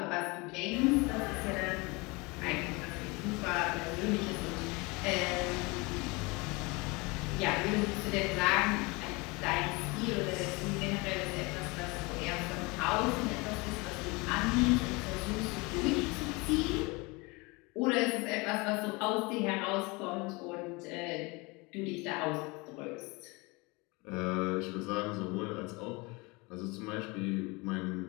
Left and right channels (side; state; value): right; quieter; 26.2 dB